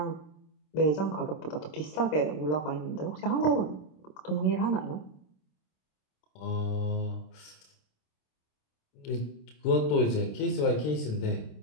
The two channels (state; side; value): late; right; 26 ms